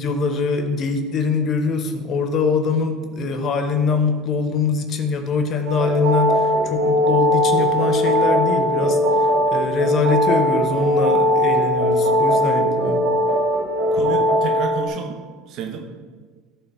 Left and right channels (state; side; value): normal; both; correlation 0.44